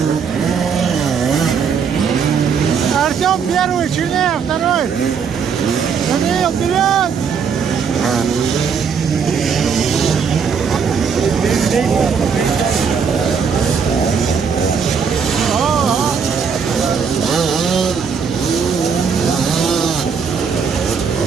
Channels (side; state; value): left; quieter; 6.3 dB